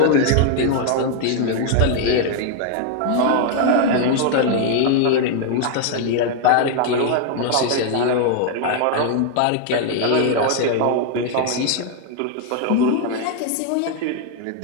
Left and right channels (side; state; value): both; different; correlation 0.00